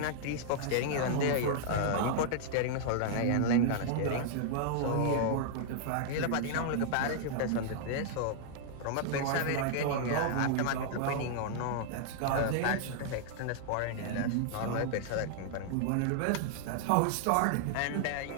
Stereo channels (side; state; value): both; different; correlation -0.01